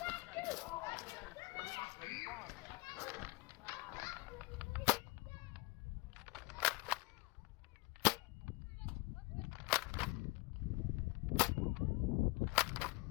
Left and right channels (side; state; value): right; quieter; 23.8 dB